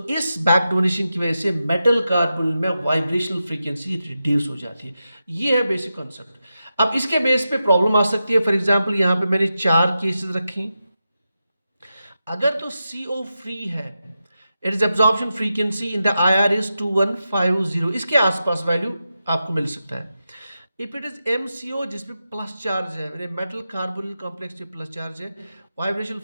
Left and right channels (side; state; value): both; inverted; correlation -0.90